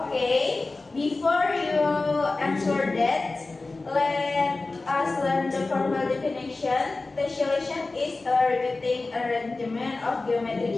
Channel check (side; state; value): right; quieter; 3.4 dB